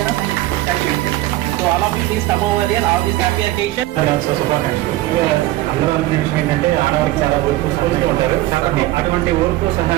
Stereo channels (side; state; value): left; quieter; 16.6 dB